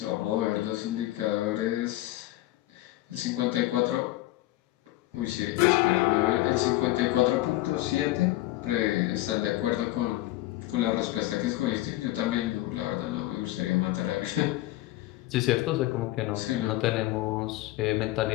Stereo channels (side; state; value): right; quieter; 16.9 dB